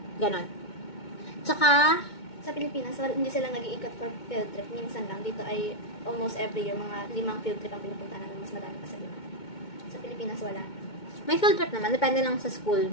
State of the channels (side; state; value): right; late; 2.2 ms